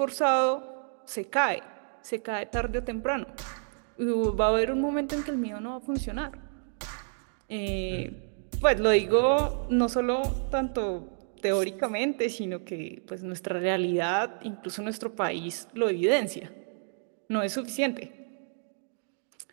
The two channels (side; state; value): left; silent; digital silence